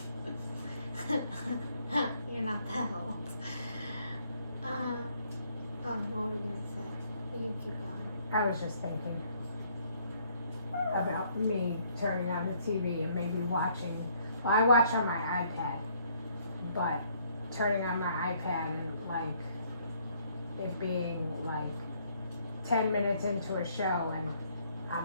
lady. You're not that old. What were you gonna say? You keep going. I was just thinking about me turning on the TV and maybe watching. Well, I watch on my iPad, but turning on my iPad and like it being like 10 minutes into a show and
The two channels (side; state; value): both; inverted; correlation -0.66